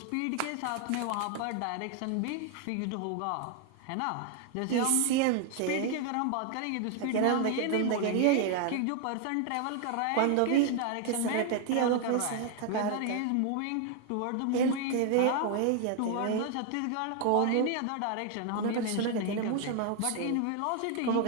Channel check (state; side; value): different; both; correlation 0.00